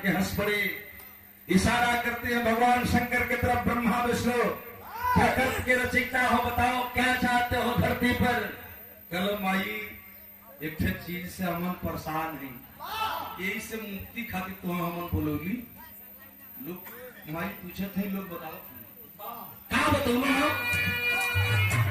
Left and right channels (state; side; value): identical; both; correlation 1.00